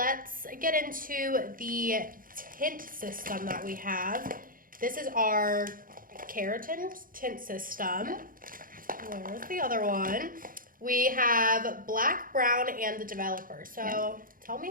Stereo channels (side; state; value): left; late; 0.40 ms